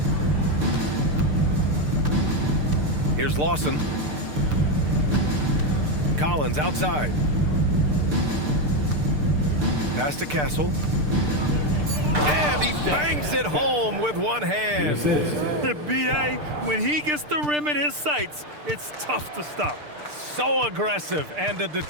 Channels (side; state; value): left; late; 6.7 ms